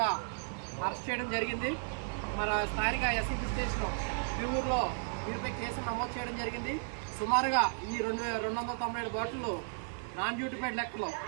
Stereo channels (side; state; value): left; silent; 55 dB below the other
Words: అరెస్ట్ చేయడం జరిగింది. మన స్థానిక ఎస్సీబీ స్టేషన్ తిరువురులో వీరిపై కేసు నమోదు చేయడం జరిగింది. సుమారుగా ఈ 297 బాటిళ్ళు నాన్ డ్యూటిఫైడ్ లెక్కలో